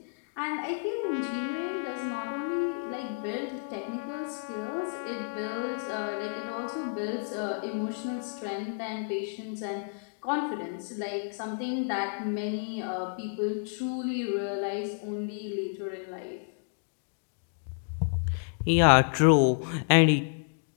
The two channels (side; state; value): right; silent; digital silence